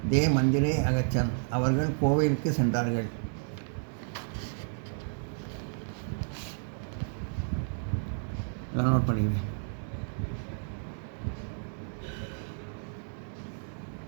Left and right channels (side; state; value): left; silent; digital silence